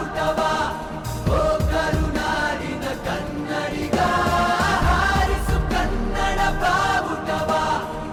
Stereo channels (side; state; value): both; identical; correlation 1.00